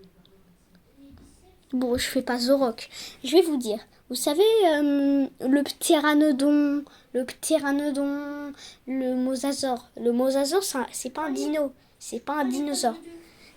Bon, je fais pas Zorok. Je vais vous dire. Vous savez, le ptéranodon, le mosasaure. Le mosasaure, c'est pas un dino. C'est pas un dinosaure.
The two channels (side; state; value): both; identical; correlation 1.00